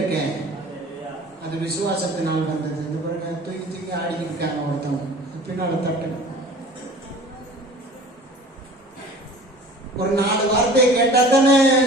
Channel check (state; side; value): normal; both; correlation 0.44